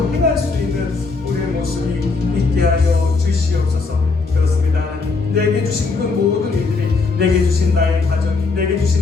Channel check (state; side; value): quieter; right; 4.2 dB